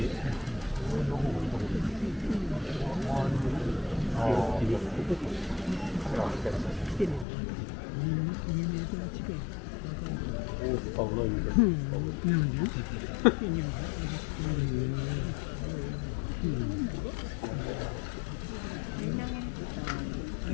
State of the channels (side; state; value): right; drops out; at 7.2 s